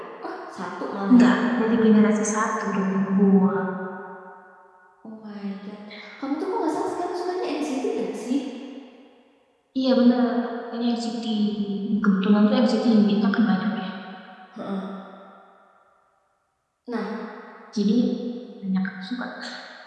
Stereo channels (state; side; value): identical; both; correlation 1.00